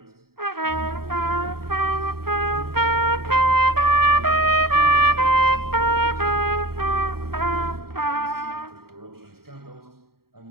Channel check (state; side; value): late; left; 0.94 ms